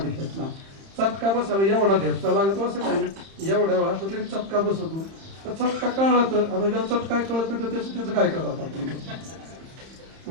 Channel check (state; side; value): late; left; 31 ms